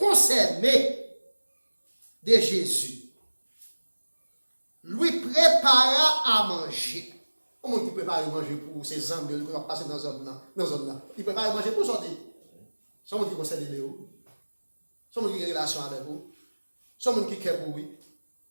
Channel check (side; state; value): both; inverted; correlation -1.00